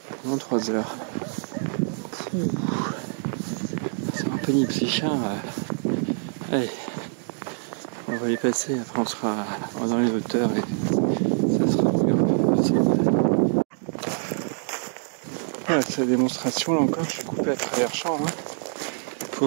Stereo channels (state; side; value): silent; left; digital silence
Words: pendant 3 heures. C'est un peu pénible ces chiens. Allez, on va les passer, après on sera dans les hauteurs et ça sera possible. Voilà, c'est la démonstration, là encore, je suis coupé à travers champ